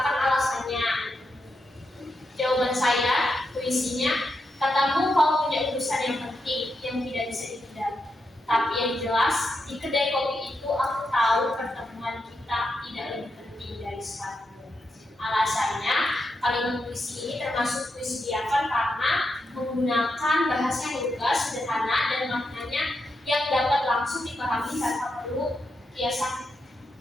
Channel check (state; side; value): normal; both; correlation 0.85